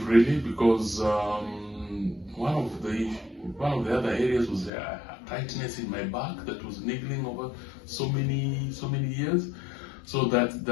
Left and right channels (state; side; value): drops out; right; at 4.7 s